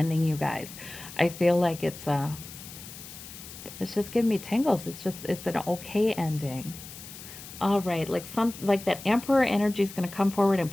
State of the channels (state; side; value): noise; left; hiss, 14 dB below the sound